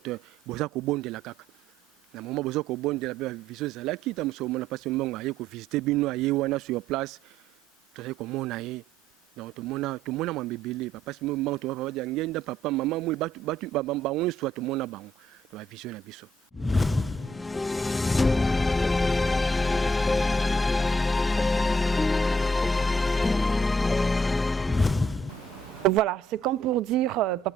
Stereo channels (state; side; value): normal; both; correlation 0.70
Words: boza ko bondela kaka na moment boza ko bondela ba vision ezali ki ta muso mona Papa Simon Kimbangu aye ko visiter bino aye wana sur place to ko mona ye. Donc tout le monde m'a bébélé Papa Simon Kimbangu to papa diangenda papa maman moi batu bango soit tout le monde bango la vision na biso. Voilà, c'est comme pour dire